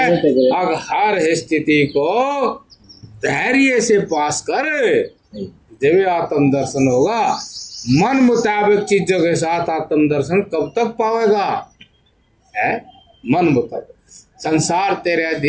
अब हर स्थिति को धैर्य से पास कर, जब आत्म दर्शन होगा। मन मुताबिक चीजों के साथ आत्म दर्शन कब तक पावेगा, है मन मुताबिक। संसार तेरे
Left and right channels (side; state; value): both; identical; correlation 1.00